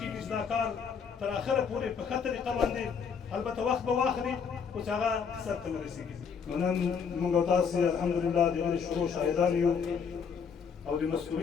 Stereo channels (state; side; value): quieter; right; 6.4 dB